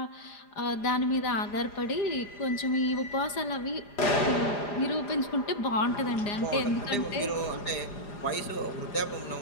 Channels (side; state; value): right; late; 4.9 ms